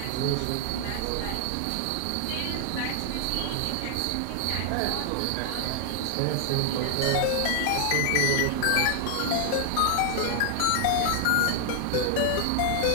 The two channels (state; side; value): different; both; correlation 0.00